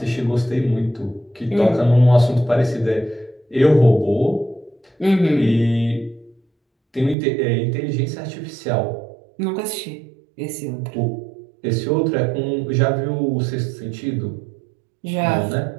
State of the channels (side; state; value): left; drops out; at 7.2 s